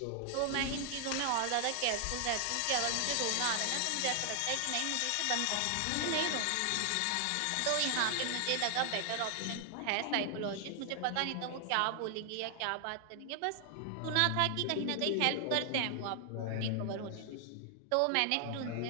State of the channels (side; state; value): both; different; correlation 0.00